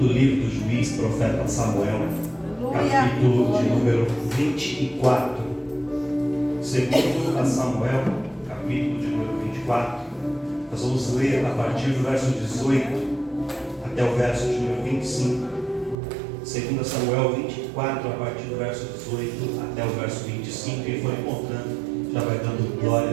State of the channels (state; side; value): drops out; left; at 16.0 s